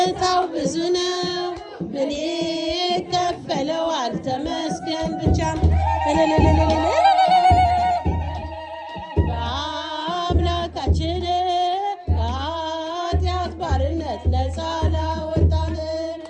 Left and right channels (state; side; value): identical; both; correlation 1.00